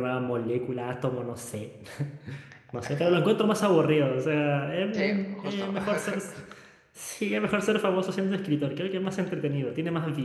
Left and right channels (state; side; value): identical; both; correlation 1.00